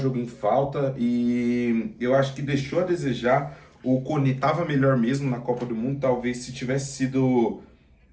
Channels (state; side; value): identical; both; correlation 1.00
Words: em falta e eu acho que deixou a desejar. O Koné estava melhor mesmo na Copa do Mundo, talvez se tivesse sido...